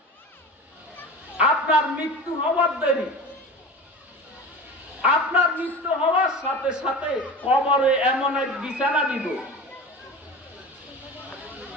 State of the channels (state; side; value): normal; both; correlation 0.32